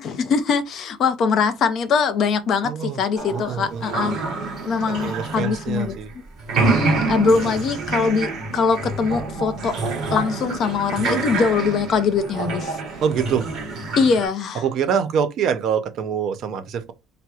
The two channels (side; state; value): both; normal; correlation 0.58